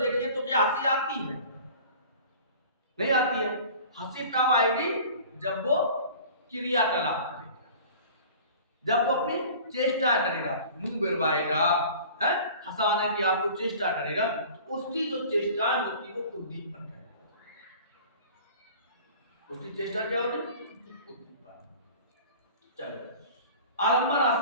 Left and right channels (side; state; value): both; inverted; correlation -0.43